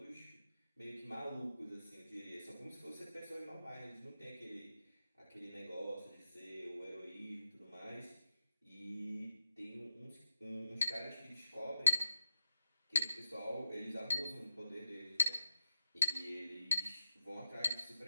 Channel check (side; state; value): both; inverted; correlation -0.91